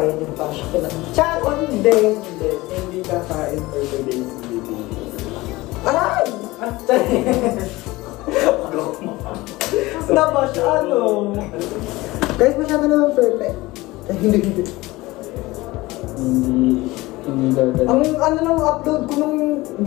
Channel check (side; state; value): right; quieter; 20.1 dB